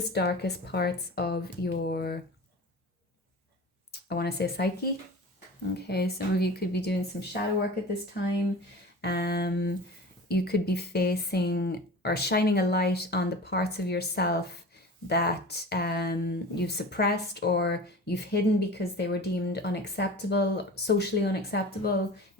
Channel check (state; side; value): normal; both; correlation 0.36